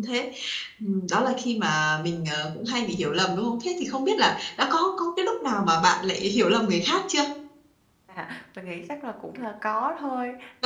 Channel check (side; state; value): both; identical; correlation 1.00